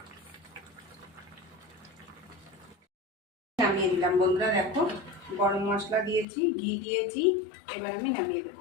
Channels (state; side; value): drops out; right; at 6.2 s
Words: নামিয়ে দিলাম বন্ধুরা, দেখো গরম মশলা দিয়েছি, ঘি দিয়েছি, এবার আমি নামিয়ে